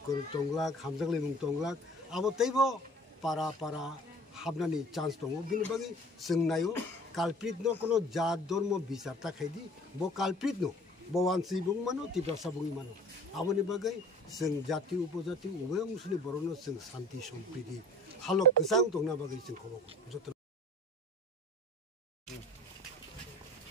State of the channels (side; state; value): both; normal; correlation 0.47